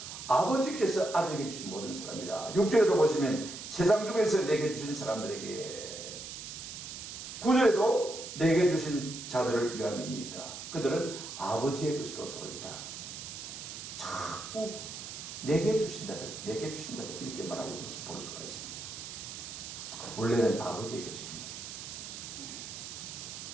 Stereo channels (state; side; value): noise; right; hiss, 9 dB below the sound